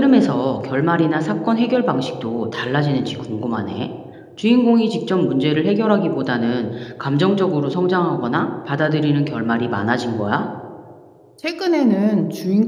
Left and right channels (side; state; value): both; identical; correlation 1.00